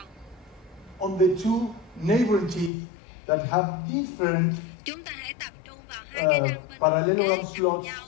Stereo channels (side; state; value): right; drops out; at 2.7 s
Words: on the two neighboring teeth that have different chúng ta hãy tập trung vào hai cái răng bên parallelogram kế cạnh slots nhau